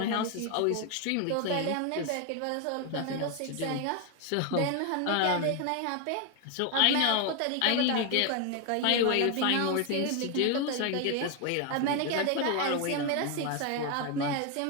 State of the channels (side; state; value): both; different; correlation 0.01